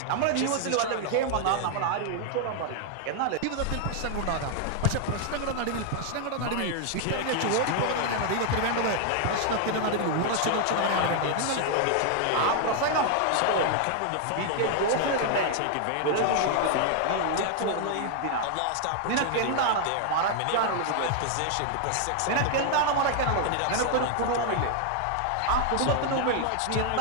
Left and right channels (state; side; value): different; both; correlation 0.00